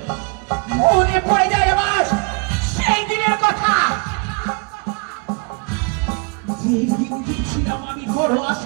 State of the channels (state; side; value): quieter; left; 33.6 dB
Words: মনে পড়ে যায় আমার সেই দিনের কথা যেদিন গেছিলাম আমি বড়